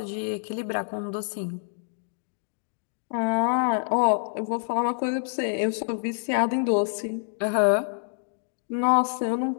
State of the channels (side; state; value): right; silent; digital silence